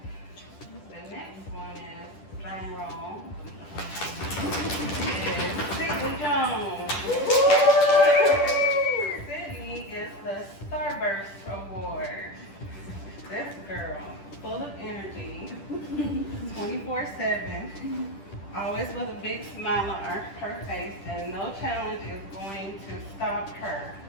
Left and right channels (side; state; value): right; late; 10 ms